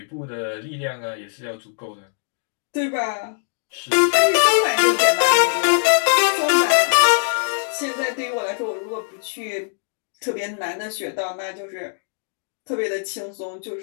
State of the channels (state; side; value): silent; right; 64 dB below the other